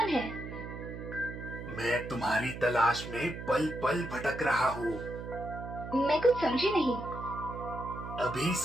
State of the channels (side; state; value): right; noise; hum, 9 dB below the sound